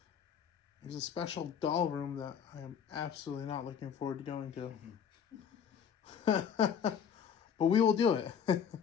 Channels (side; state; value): right; quieter; 7.7 dB